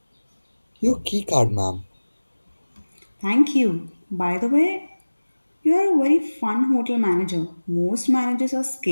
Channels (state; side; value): inverted; both; correlation -1.00